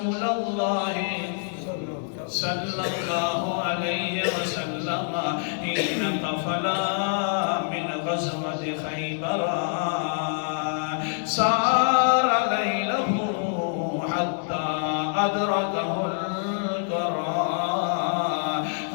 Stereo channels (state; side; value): silent; right; 61 dB below the other